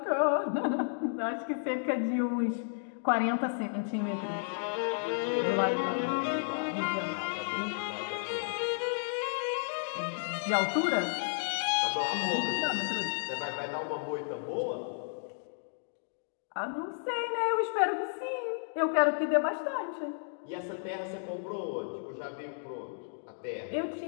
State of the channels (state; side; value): silent; right; digital silence